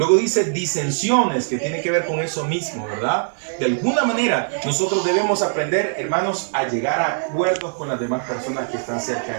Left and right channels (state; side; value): silent; left; digital silence